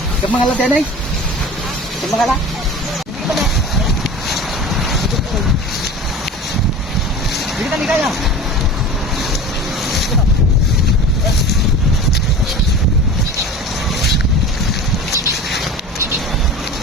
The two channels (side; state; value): both; normal; correlation 0.36